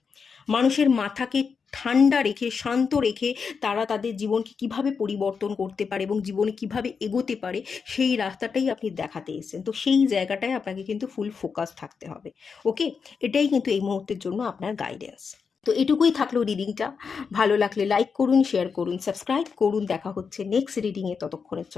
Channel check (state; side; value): quieter; right; 5.7 dB